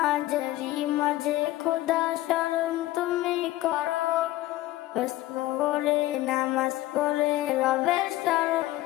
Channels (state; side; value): quieter; right; 16.3 dB